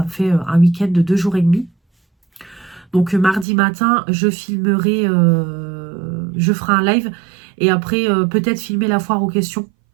me fait un week-end de 2 jours et demi. Donc mardi matin, je filmerai, je ferai un live. Et après, peut-être filmer la foire aux questions.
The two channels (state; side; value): drops out; left; at 3.5 s